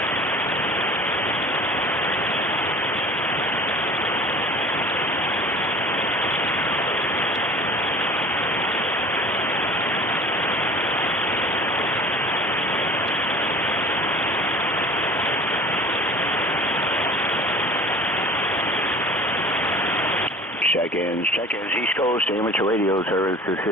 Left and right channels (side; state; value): both; normal; correlation 0.43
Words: Check-ins, East Coast, amateur radio service. This